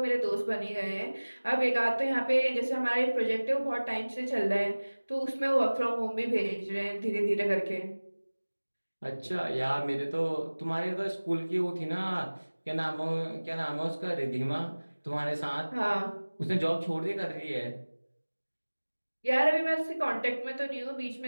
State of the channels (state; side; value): inverted; both; correlation -1.00